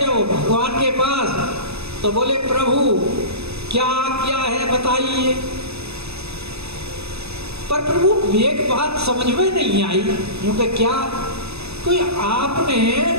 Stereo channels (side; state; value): left; late; 0.79 ms